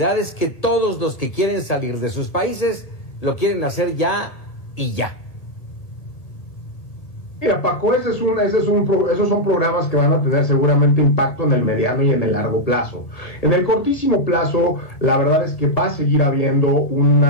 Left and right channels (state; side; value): late; right; 1.7 ms